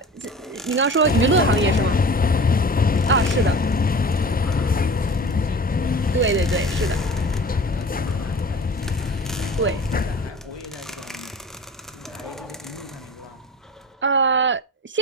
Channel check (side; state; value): both; normal; correlation 0.39